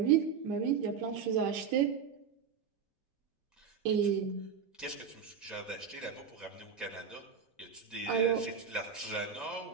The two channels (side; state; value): left; quieter; 6.8 dB